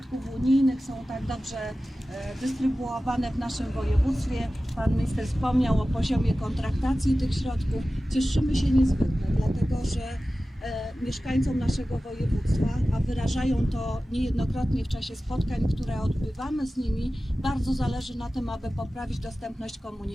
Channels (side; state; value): both; normal; correlation 0.95